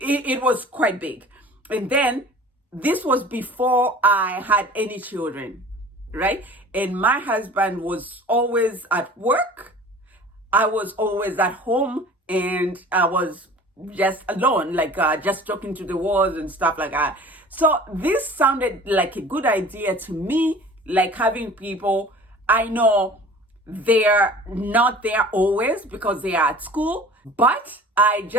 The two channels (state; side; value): normal; both; correlation 0.44